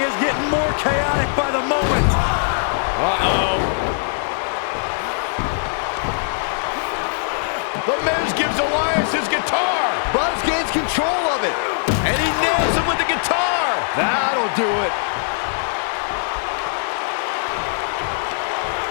is getting more chaotic by the moment. Uh-oh. The Miz gives Elias his guitar. Buzz gains control of it. And he nails him with the guitar. That'll do it.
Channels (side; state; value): right; silent; 59 dB below the other